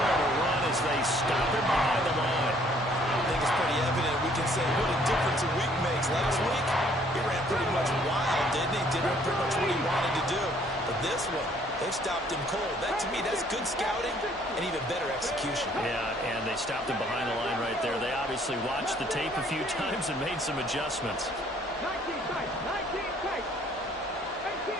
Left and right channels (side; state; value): both; normal; correlation 0.61